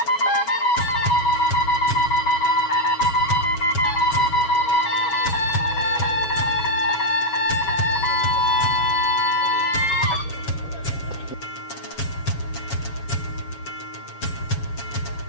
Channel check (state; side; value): late; right; 7.2 ms